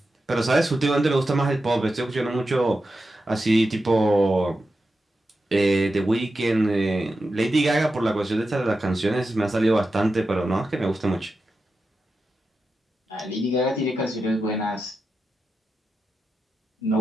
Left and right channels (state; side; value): normal; both; correlation 0.90